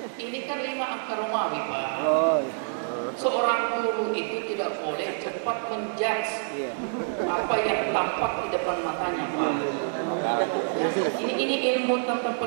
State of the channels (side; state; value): left; silent; 60 dB below the other